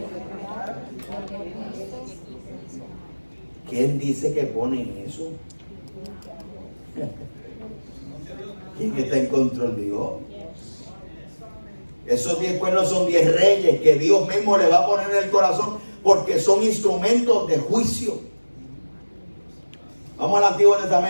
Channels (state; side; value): inverted; both; correlation -1.00